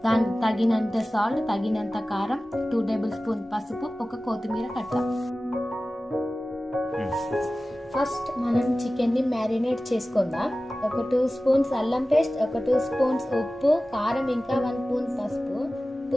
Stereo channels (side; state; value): both; normal; correlation 0.96